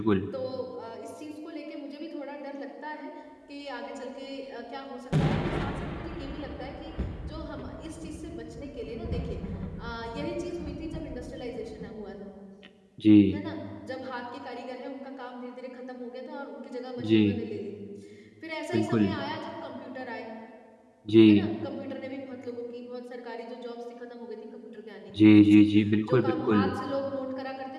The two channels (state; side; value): identical; both; correlation 1.00